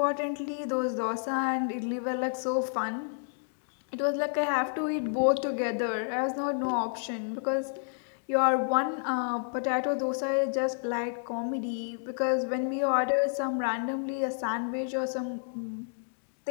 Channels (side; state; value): right; silent; digital silence